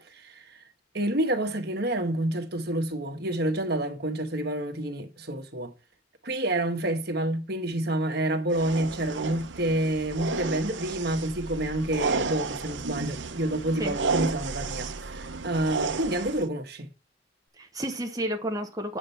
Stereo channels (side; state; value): both; normal; correlation 0.29